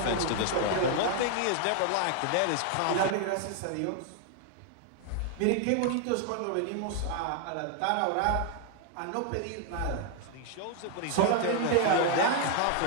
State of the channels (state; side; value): different; both; correlation 0.00